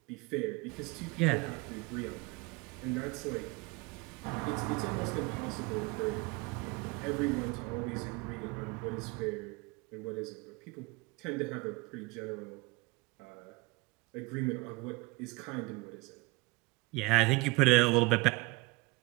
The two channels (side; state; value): left; quieter; 24.4 dB